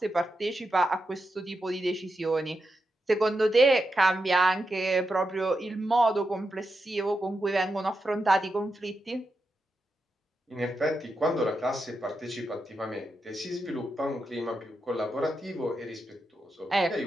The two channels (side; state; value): both; normal; correlation 0.87